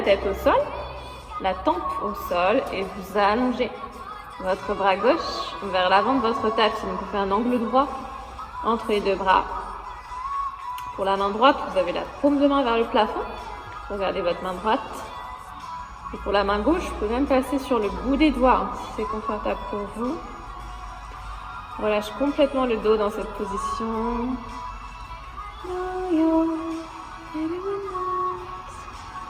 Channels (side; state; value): both; identical; correlation 1.00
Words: tête au sol, la tempe au sol et vous allongez votre bras gauche vers l'avant de votre tapis. Donc vous faites un angle droit entre les deux bras. Pour la main droite, vous avez la paume de main vers le plafond. Regardez votre main droite. Et pour la main gauche, vous pouvez même passer sur le bout des doigts si c'est confortable pour vous. On relâche complètement le dos dans cette position.